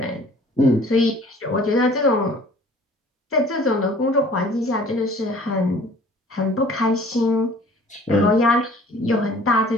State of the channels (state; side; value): normal; both; correlation 0.51